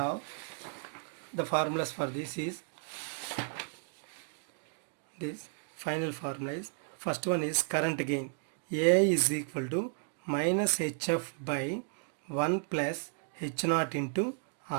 the formulas for this is, this final formula is, first one is current gain. AI is equal to minus HF by 1 plus H0 into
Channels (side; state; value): left; silent; 55 dB below the other